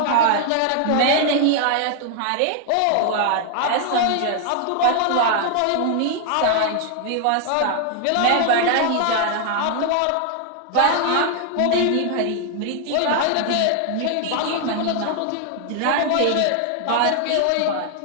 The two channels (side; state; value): both; different; correlation 0.00